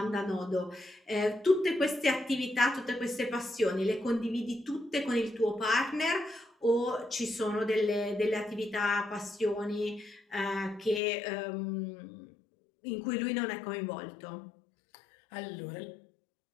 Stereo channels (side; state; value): right; drops out; at 11.0 s